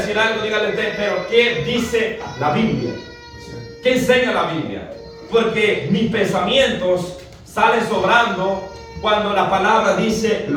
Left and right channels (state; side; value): identical; both; correlation 1.00